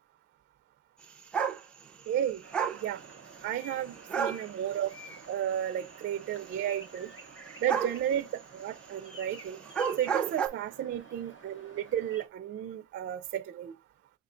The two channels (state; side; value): quieter; left; 8.9 dB